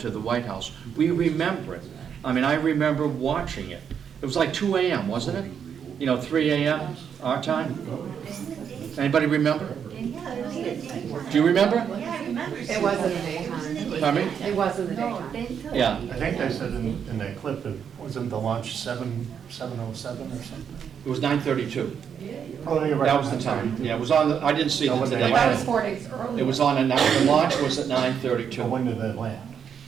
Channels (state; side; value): quieter; left; 7.7 dB